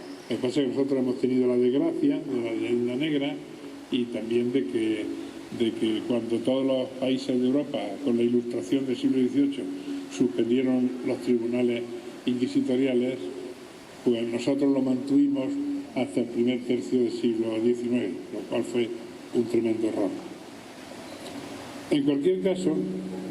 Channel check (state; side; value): identical; both; correlation 1.00